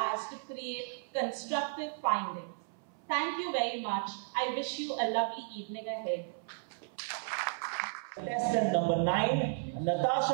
to create constructive findings. Thank you very much. I wish you a lovely evening ahead. Contestant number 9,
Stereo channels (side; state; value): left; silent; 55 dB below the other